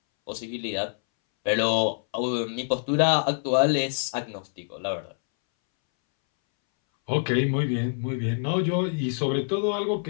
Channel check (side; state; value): right; silent; 61 dB below the other